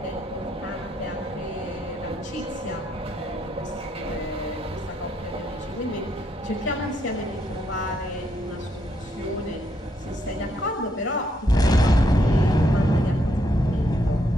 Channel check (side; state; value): both; normal; correlation 0.75